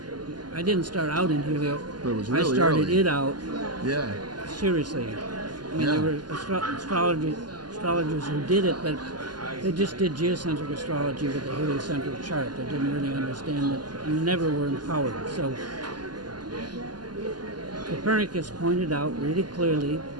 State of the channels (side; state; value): left; late; 0.70 ms